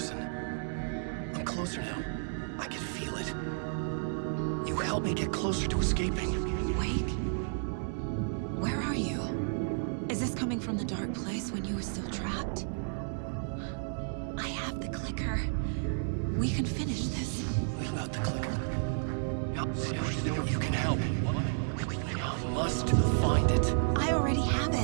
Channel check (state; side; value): silent; left; digital silence